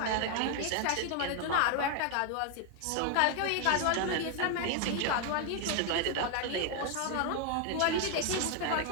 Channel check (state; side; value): different; both; correlation 0.01